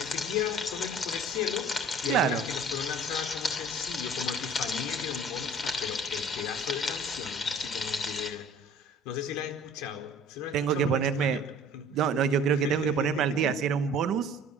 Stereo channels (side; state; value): both; normal; correlation 0.49